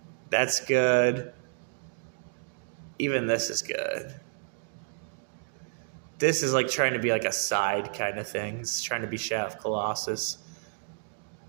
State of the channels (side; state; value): left; silent; digital silence